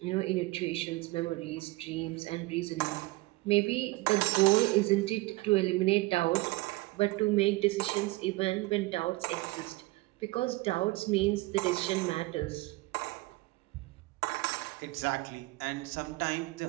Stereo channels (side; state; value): left; quieter; 21.1 dB